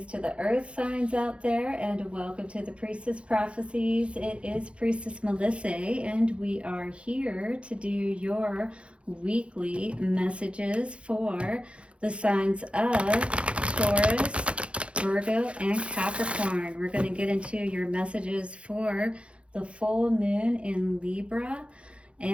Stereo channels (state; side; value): late; left; 0.060 ms